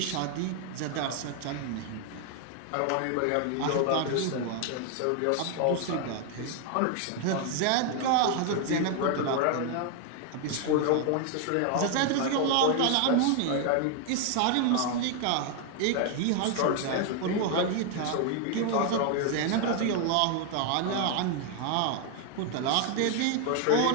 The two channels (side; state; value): both; different; correlation 0.00